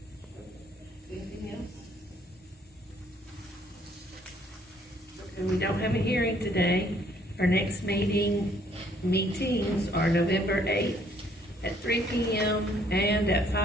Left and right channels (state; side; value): normal; both; correlation 0.64